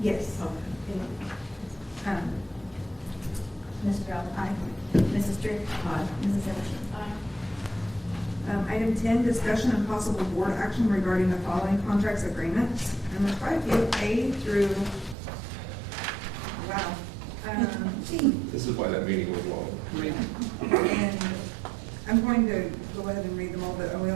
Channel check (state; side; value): drops out; left; at 15.2 s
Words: Yes. Mrs. Rowland? Aye. Mrs. Drew? Aye. Mrs. Zimmershed? Item 10, discussion and possible board action regarding the following contracts agreements. And there's quite a few, A through, wow, G. This is why that meeting was long. And I'm going to go ahead and read them all, but we